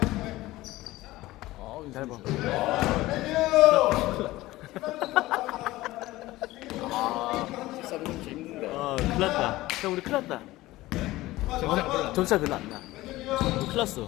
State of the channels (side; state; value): right; quieter; 17.8 dB